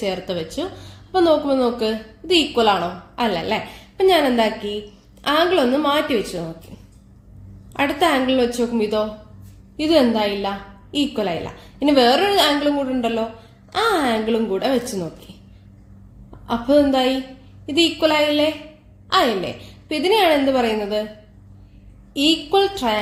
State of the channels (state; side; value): identical; both; correlation 1.00